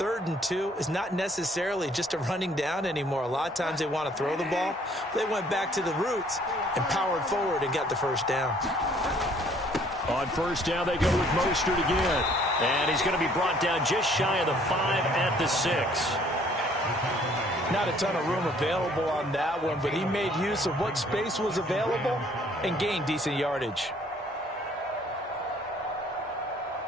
and 2 is not necessarily just a running down anymore. A lot of times they want to throw the ball. They went back to the roots and powered forward and got the first down. On first down, they go with Mostert again. And he's going to be brought down just shy of the 5 at the 6. Not a ton of room available on that one, but he made use of what space was available and gained decent yardage.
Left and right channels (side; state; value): both; normal; correlation 0.60